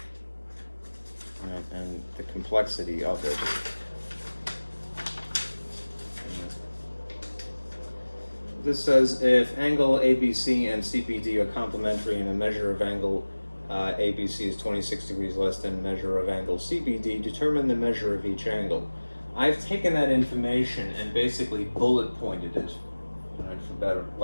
Right, and the complexity of it. This says if angle ABC and CBD are complementary and the measure of angle ABC is 26 degrees less than the measure of angle CBD, determine the measure of each angle. I've taken that information and basically bullet pointed it, right, for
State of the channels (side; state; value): both; inverted; correlation -1.00